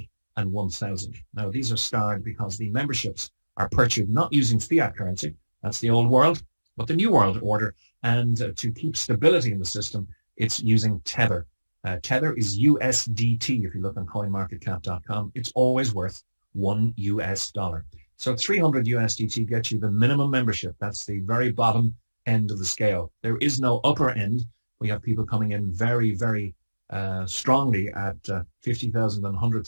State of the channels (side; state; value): both; inverted; correlation -1.00